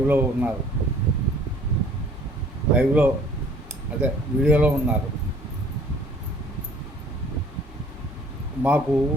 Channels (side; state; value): both; normal; correlation 0.55